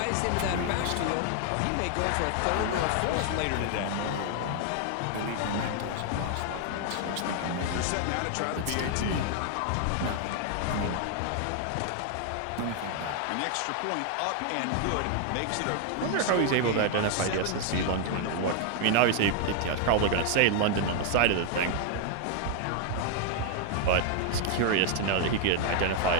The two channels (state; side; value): different; both; correlation 0.00